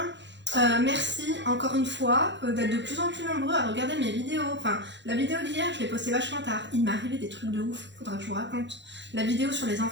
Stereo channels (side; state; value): left; late; 0.52 ms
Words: Merci encore une fois d'être de plus en plus nombreux à regarder mes vidéos. Enfin, la vidéo d'hier, je l'ai postée vachement tard. Il m'est arrivé des trucs de ouf, faudra que je vous raconte. La vidéo sur les